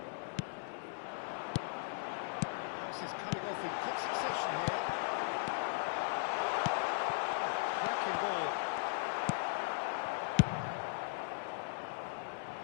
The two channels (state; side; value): silent; right; digital silence